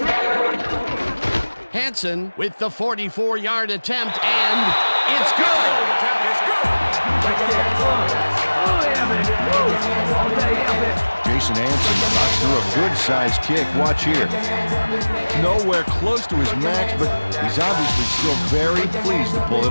Hansen with the 44-yard attempt, and it's good. Jason Hansen knocks through a good-sized kick. Watch here. Nowhere close to his max, but he's obviously still very pleased to pull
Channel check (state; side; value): inverted; both; correlation -1.00